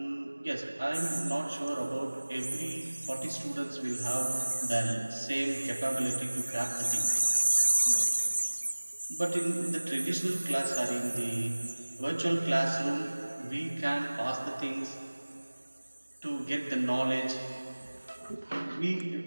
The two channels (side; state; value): both; inverted; correlation -1.00